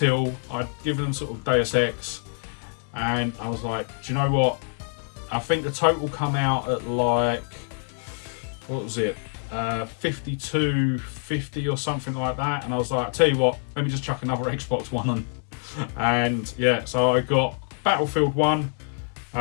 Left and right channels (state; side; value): silent; right; 56 dB below the other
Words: I'd given them sort of Deus Ex, and I was like, do you know what? I think the total come out at like, what was it, 52.50 or something like that. And I was like, I tell you what, let me just chuck another Xbox One on. And yeah, so I got Battlefield 1.